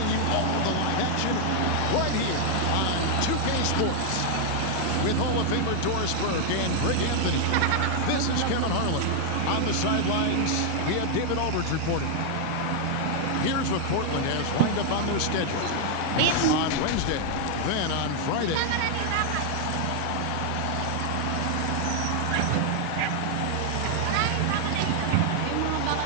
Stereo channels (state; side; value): different; both; correlation 0.00